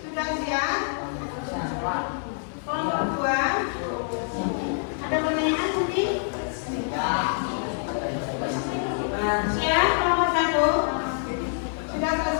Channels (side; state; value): right; silent; digital silence